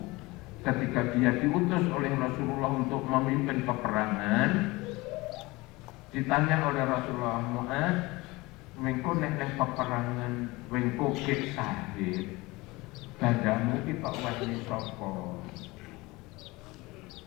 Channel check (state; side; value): quieter; right; 22.2 dB